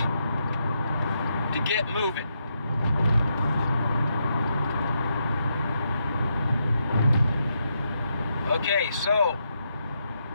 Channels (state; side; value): inverted; both; correlation -0.81